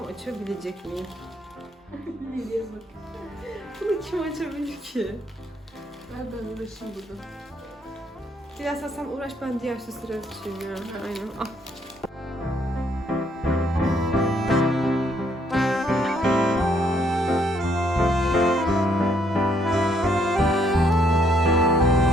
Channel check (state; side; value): normal; both; correlation 0.70